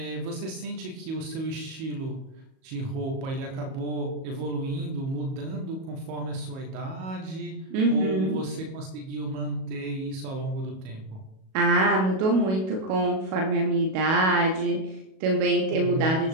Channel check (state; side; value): late; left; 37 ms